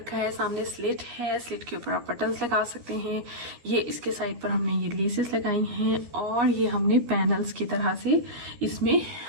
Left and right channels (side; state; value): left; late; 13 ms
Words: है, सामने स्लिट है, स्लिट के ऊपर आप बटन्स लगा सकते हैं। ये इसके साइड पर हमने ये लेसेस लगाई हैं और ये हमने पैनल्स की तरह से इसमें